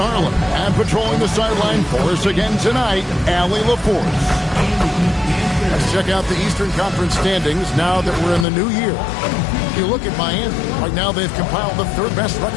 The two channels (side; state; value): right; drops out; at 8.5 s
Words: Harlan. And patrolling the sideline for us again tonight, Allie LaForce. Let's check out the Eastern Conference standings now that we're in the new year. If you look at Miami, right now they've compiled the third best